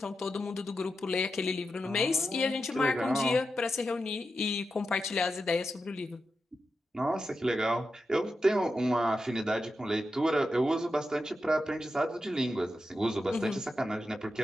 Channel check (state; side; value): normal; both; correlation 0.89